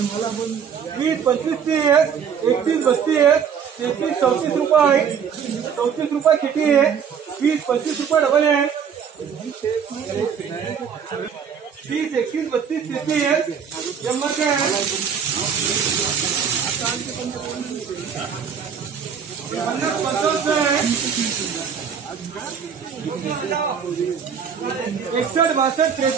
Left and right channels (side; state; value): left; quieter; 7.3 dB